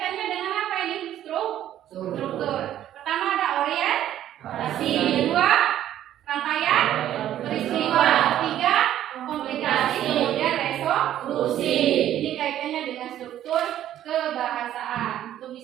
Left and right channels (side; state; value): left; quieter; 11.8 dB